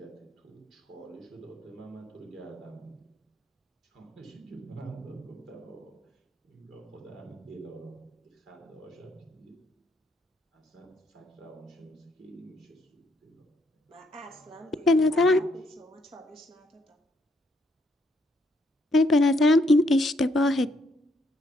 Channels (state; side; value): normal; both; correlation 0.73